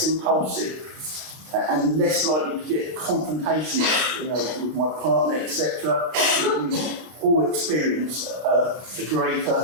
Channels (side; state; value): left; late; 32 ms